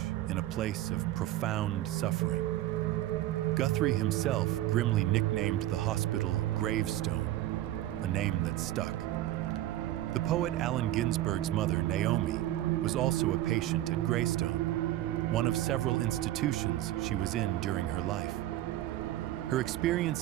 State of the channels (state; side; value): quieter; left; 14.3 dB